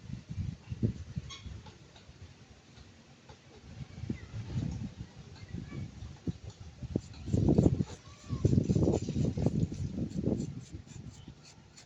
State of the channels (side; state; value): both; identical; correlation 1.00